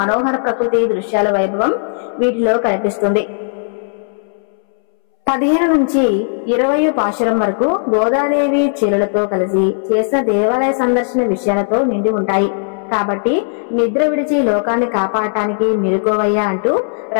ప్రకృతి దృశ్యాల వైభవం వీటిలో కనిపిస్తుంది. 15 నుంచి 20 పాశురం వరకు గోదాదేవి చీరలతో కలిసి చేసిన దేవాలయ సందర్శన విషయాలతో నిండి ఉంటాయి. కాబట్టి నిద్ర విడిచి లోకాన్ని కాపాడటానికి మెలుకోవయ్యా అంటూ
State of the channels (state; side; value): silent; right; 66 dB below the other